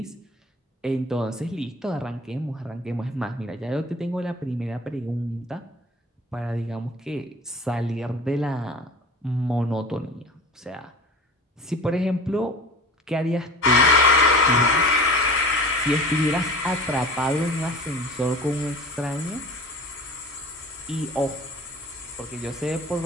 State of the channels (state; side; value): normal; both; correlation 0.38